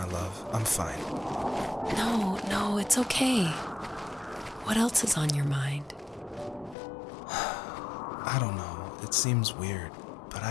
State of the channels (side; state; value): right; drops out; at 6.8 s